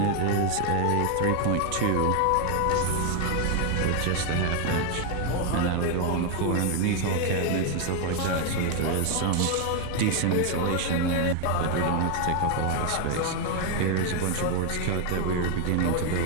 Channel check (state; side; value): different; both; correlation 0.01